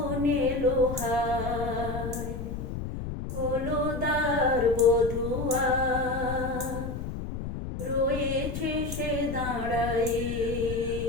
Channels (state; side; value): noise; left; rumble, 6 dB below the sound